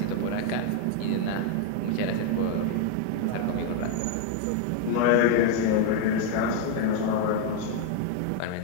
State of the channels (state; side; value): different; both; correlation 0.00